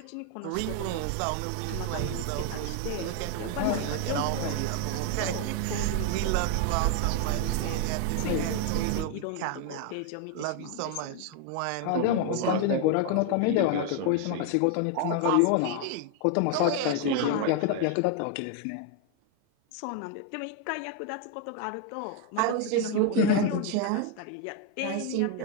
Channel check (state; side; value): different; both; correlation 0.01